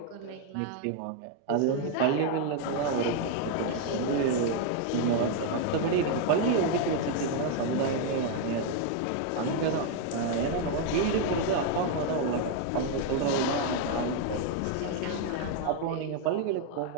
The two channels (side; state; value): both; different; correlation 0.01